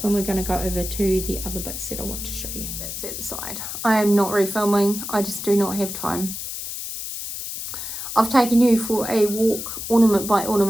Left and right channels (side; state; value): left; noise; hiss, 7 dB below the sound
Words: and we're going to go over to the other bits that I want to show you. That's at the side. I am not refilming. I just do not have time. I've taken you for a walk ornament by